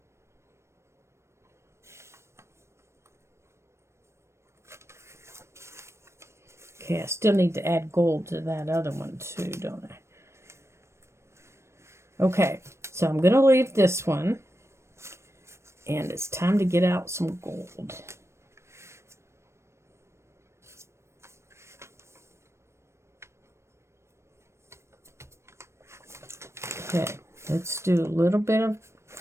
Okay, I still need to add gold to that other one too, don't I? Okay, so I'm going to leave this one. And it's time to get out some gold. Okay, let's do a little bit of,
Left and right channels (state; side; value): late; left; 0.13 ms